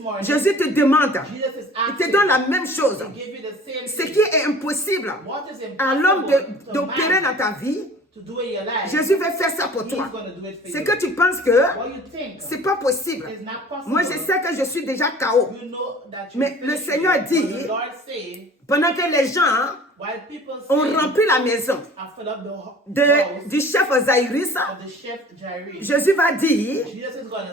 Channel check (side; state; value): both; normal; correlation 0.46